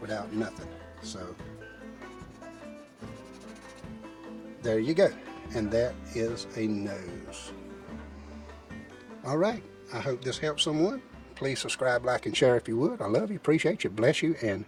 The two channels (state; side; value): identical; both; correlation 1.00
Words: nothing. So there you go, and that is a nose. All right, I hope this helps someone. Please subscribe, like, and share if you would. I love you, appreciate you, bless you, and